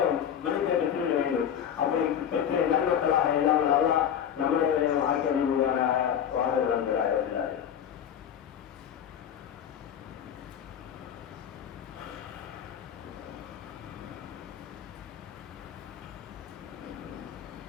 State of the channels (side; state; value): right; quieter; 9.0 dB